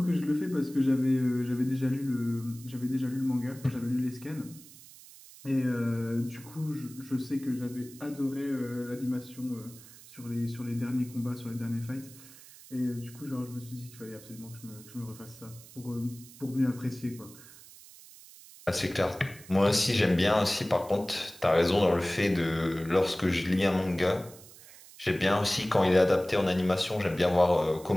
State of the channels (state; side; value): noise; right; hiss, 20 dB below the sound